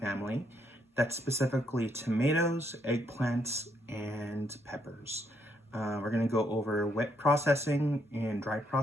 That's specifically tomatoes, eggplants, and peppers. We're gonna go over wet processing and dry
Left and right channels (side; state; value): both; normal; correlation 0.74